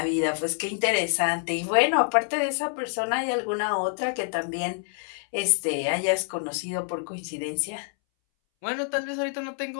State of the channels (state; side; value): silent; right; 60 dB below the other